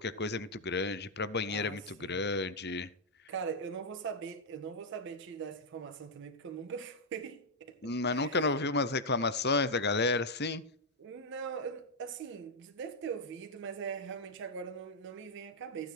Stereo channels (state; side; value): normal; both; correlation -0.03